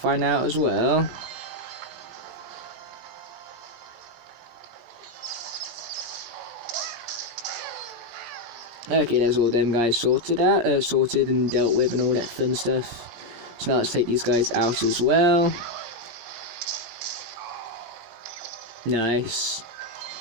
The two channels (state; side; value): late; left; 17 ms